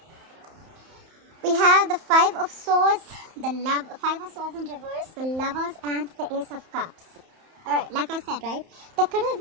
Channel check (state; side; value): late; left; 31 ms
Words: We have the Five of Swords, Five of Swords in reverse, the Lovers, and the Ace of Cups. Alright, like I said, right? There could have